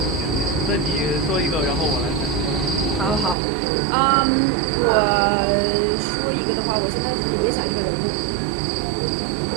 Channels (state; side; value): drops out; left; at 3.4 s